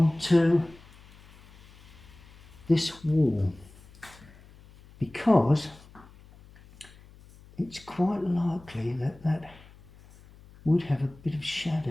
this wall, because it's quite likely that would have a bit of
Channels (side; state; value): left; noise; hum, 23 dB below the sound